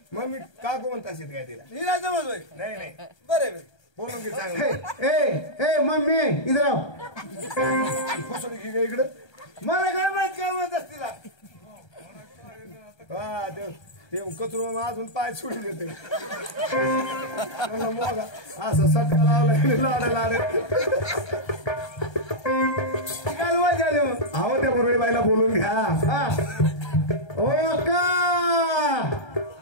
मम्मी काकू म्हणत असेल काय तिला हिला जमतोय नाही नाही बरोबर बोलून घे चांगलं. ए मम्मी इधर आओ. फसवणी घे इकडं. मला काय म्हणत असतील हा ते कचरू अजून पाय सोडून देते असं सटका लावला लाड काय मजा आली मग. आहो त्या मुरळी बाईला बोलून घ्या. हा. ओ का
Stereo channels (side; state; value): right; late; 1.3 ms